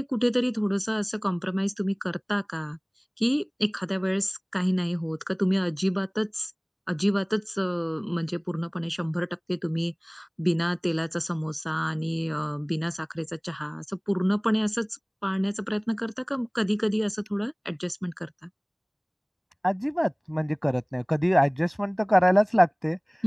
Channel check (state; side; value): identical; both; correlation 1.00